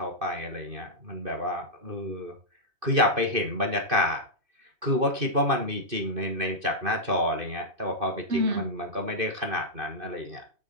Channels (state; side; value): late; left; 2.6 ms